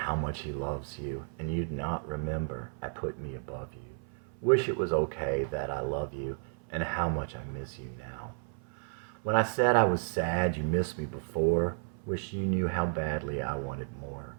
much he loves you, and you'd not remember I put me above you. Wish it was okay that I love you, and how much I miss you now. When I said I was sad you missed me before, wish you knew how badly I wanted more,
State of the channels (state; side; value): silent; left; 56 dB below the other